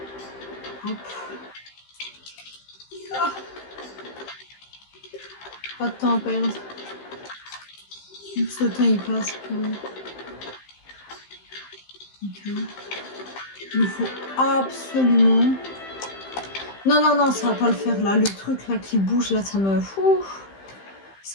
Hop. Ah. Pas de temps à perdre. Ce temps, il passe. Ok. Il faut absolument... Non, non, non, ça va pas le faire là. Le truc là qui bouge là, ça me... Ouh,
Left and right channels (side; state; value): right; late; 15 ms